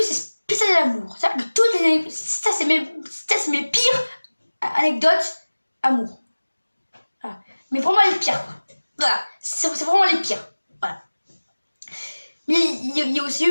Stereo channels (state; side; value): inverted; both; correlation -1.00